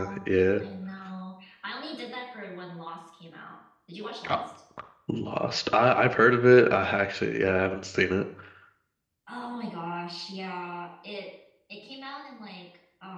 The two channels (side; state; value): both; identical; correlation 1.00